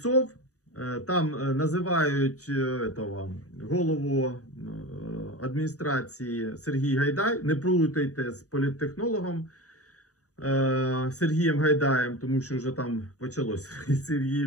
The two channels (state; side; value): late; right; 0.66 ms